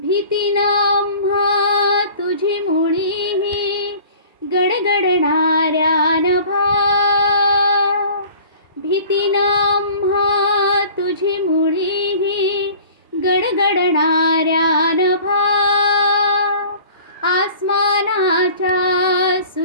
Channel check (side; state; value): both; inverted; correlation -0.46